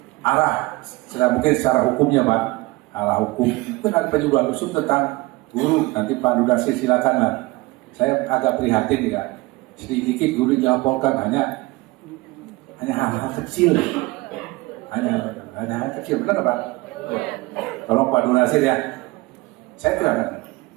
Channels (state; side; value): quieter; left; 22.0 dB